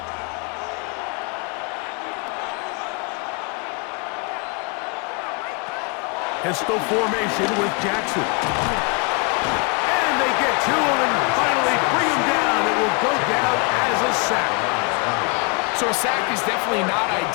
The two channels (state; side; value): quieter; right; 32.2 dB